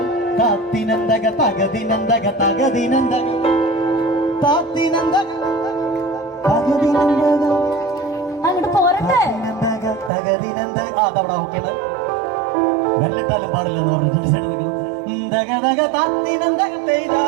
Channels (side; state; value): left; drops out; at 10.1 s